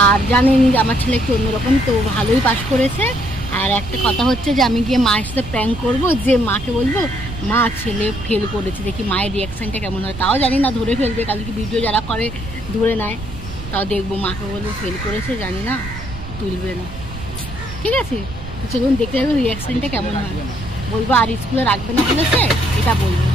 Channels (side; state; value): right; noise; rumble, 12 dB below the sound